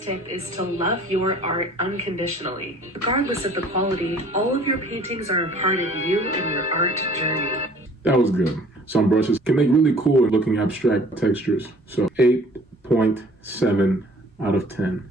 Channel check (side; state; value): both; normal; correlation 0.52